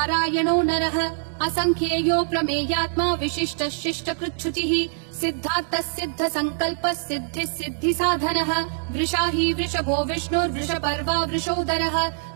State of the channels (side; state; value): left; silent; digital silence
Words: नरः असंख्येयो प्रमेयात्मा विशिष्टः शिष्टकृच्छुचिः सिद्धार्थः सिद्ध संकल्पः सिद्धिः सिद्धि साधनः वृषाही वृषभो विष्णुर्वृषपर्वा वृषोदरः